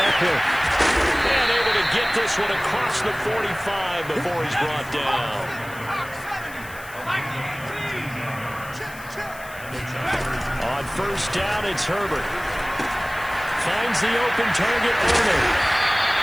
And able to get this one across the 45 before he's brought down. On first down, it's Herbert. Finds the open target, Arnold.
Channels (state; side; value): noise; left; hiss, 18 dB below the sound